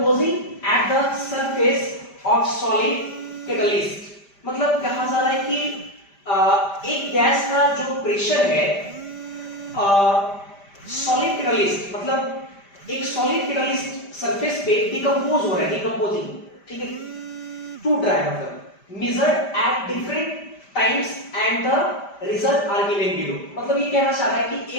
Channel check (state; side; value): late; right; 5.1 ms